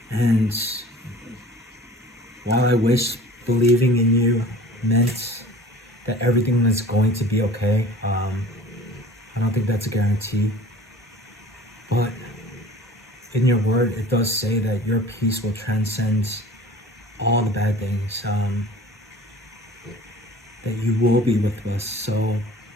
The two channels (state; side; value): normal; both; correlation 0.44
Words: And while I wish believing in you meant that everything is going to be okay, I don't think that's a guarantee. But in your word, it does say that your peace will transcend all the bad things, that you will be with us. So,